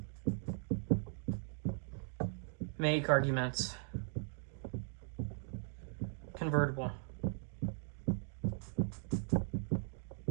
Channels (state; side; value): silent; left; 52 dB below the other